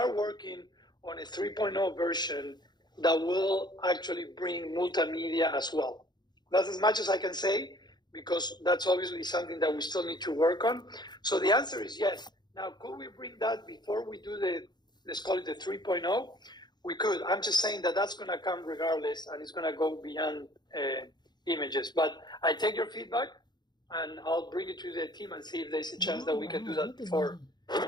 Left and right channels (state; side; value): late; right; 0.21 ms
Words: working on a 3.0 version that will actually bring multimedia as well. That's as much as I can say, because that's obviously something that we still need to work on. So the answer is yes. Now, could we bring that before we do let's call it the 3.0? We could. I'm just saying that that's going to come regardless, and it's going to go beyond images. But I take your feedback, and I'll bring it to the team and see if there's a chance that we can do that before we